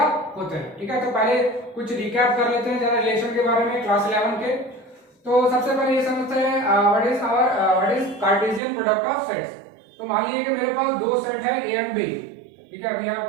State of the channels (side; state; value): left; drops out; at 8.6 s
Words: होते हैं। ठीक है, तो पहले कुछ रिकैप कर लेते हैं जरा रिलेशन के बारे में क्लास 11 के। तो सबसे पहले ये समझते हैं what is Cartesian product of sets. तो मान लीजिए कि मेरे पास दो सेट है ए एंड बी। ठीक है, we have